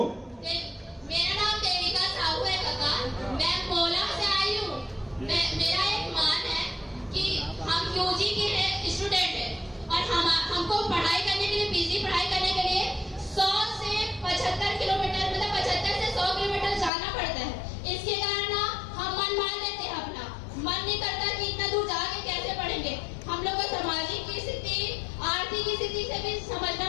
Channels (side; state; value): right; drops out; at 16.9 s